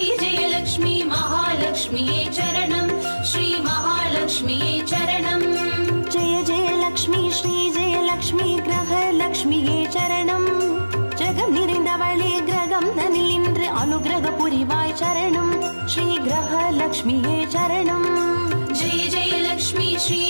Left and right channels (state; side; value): inverted; both; correlation -1.00